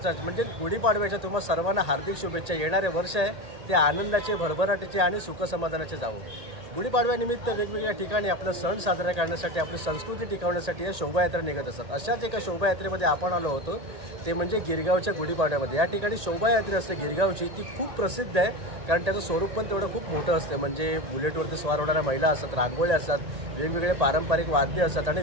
म्हणजे गुढीपाडव्याच्या तुम्हाला सर्वांना हार्दिक शुभेच्छा। येणारे वर्ष आहे ते आनंदाचे, भरभराटीचे आणि सुखसमाधानाचे जावो। गुढीपाडव्यानिमित्त वेगवेगळ्या ठिकाणी आपला सण साजरा करण्यासाठी, आपली संस्कृती टिकवण्यासाठी या शोभायात्रा निघत असतात। अशाच एका शोभायात्रेमध्ये आपण आलो होतो, ते म्हणजे गिरगावच्या गुढीपाडव्यामध्ये। या ठिकाणी शोभायात्रा असते गिरगावची, ती खूप प्रसिद्ध आहे कारण त्याचं स्वरूप पण तेवढं खूप मोठं असतं। म्हणजे बुलेटवरती स्वार होणाऱ्या महिला असतात, रांगोळ्या असतात, वेगवेगळे पारंपरिक वाद्य असतात आणि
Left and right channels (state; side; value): late; left; 1.8 ms